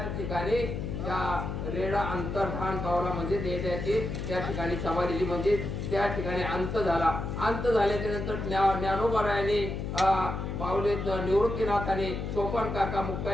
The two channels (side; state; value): left; noise; hum, 4 dB below the sound